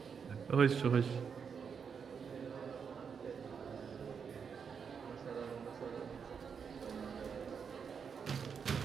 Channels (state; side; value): quieter; left; 6.5 dB